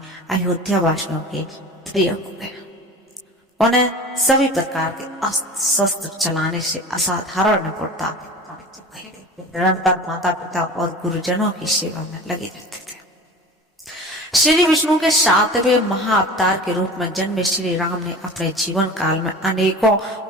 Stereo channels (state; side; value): normal; both; correlation 0.37